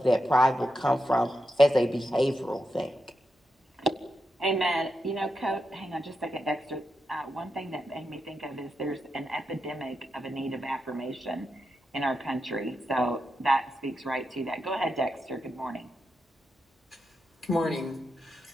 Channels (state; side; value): normal; both; correlation 0.87